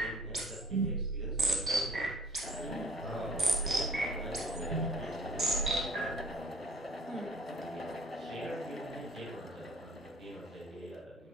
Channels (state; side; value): normal; both; correlation 0.52